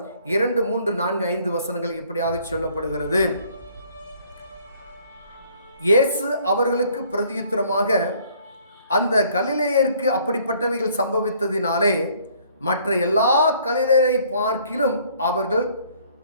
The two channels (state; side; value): inverted; both; correlation -0.60